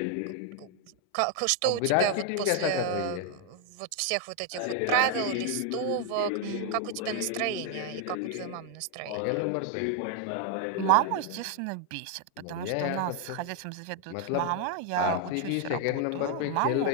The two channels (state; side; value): different; both; correlation 0.01